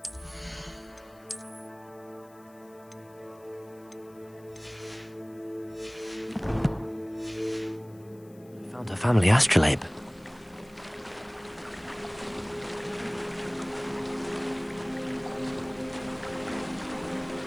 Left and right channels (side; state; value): left; noise; hiss, 28 dB below the sound